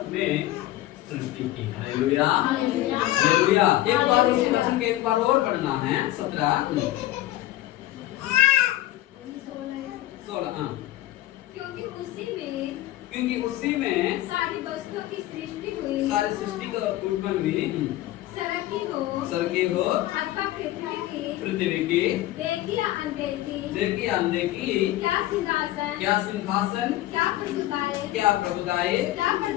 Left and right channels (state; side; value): quieter; right; 15.5 dB